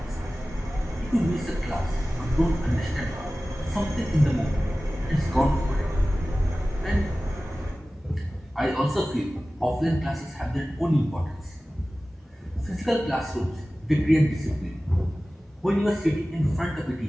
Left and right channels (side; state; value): both; normal; correlation 0.97